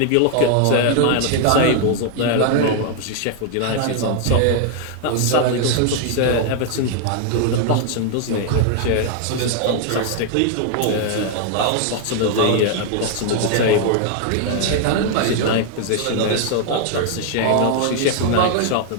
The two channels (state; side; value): different; both; correlation 0.00